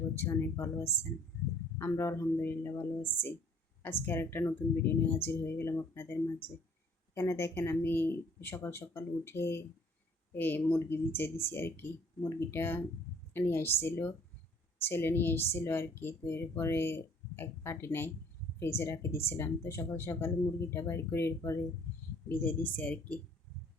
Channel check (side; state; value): both; normal; correlation 0.58